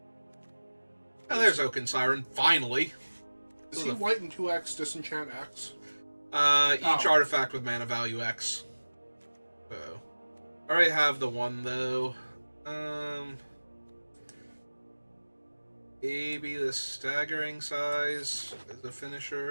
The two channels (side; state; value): both; inverted; correlation -1.00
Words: Oh, there's Oaken Siren, finally! Is he white and 2x disenchant X? Each artifact with mana value X. So, I already have the 1 though. Maybe the Staggering Size as a